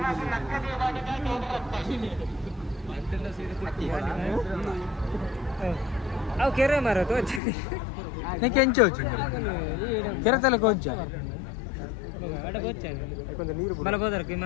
అవు కెరే మారతో నీకు ఎంచి వచ్చింది కెరతలకు వచ్చా అడగ వచ్చాను కొంచెం నీరు మళ్ళీ పోతారు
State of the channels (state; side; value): drops out; right; at 7.4 s